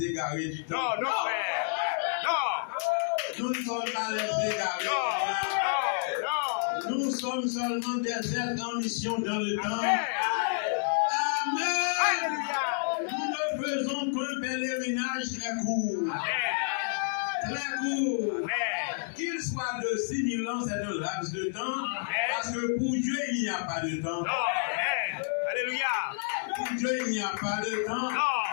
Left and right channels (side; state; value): right; silent; digital silence